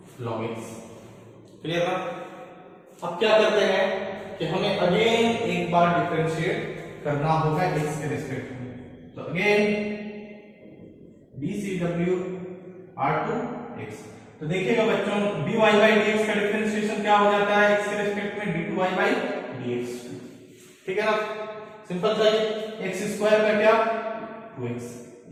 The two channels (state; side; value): identical; both; correlation 1.00